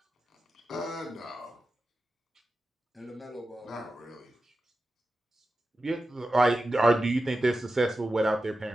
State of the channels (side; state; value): both; normal; correlation 0.92